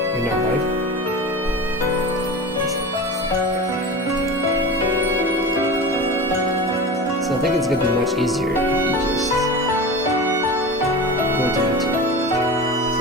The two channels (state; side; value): normal; both; correlation 0.30